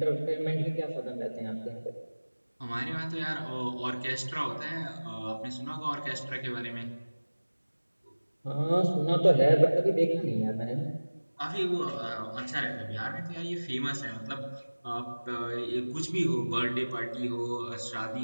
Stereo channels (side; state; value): both; inverted; correlation -1.00